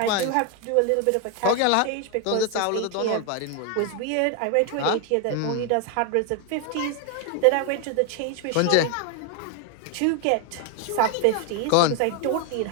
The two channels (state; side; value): different; both; correlation 0.01